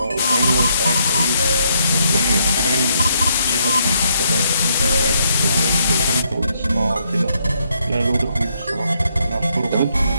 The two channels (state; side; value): inverted; both; correlation -0.72